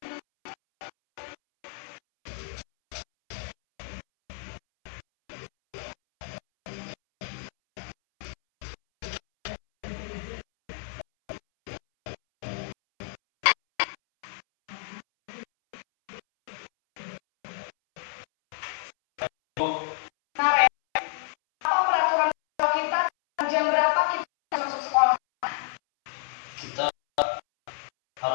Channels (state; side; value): silent; right; 59 dB below the other